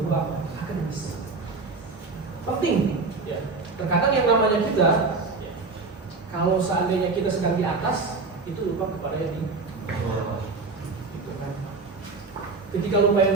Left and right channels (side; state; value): left; quieter; 4.1 dB